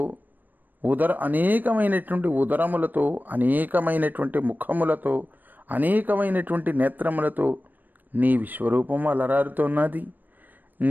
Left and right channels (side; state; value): left; late; 0.088 ms